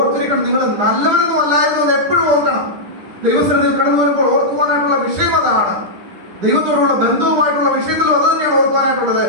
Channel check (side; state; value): left; late; 10 ms